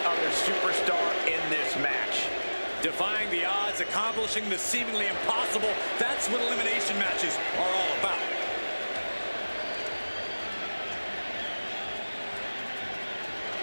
Superstar in this match. Defying the odds, accomplishing the seemingly impossible. That's what elimination matches are all about.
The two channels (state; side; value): inverted; both; correlation -1.00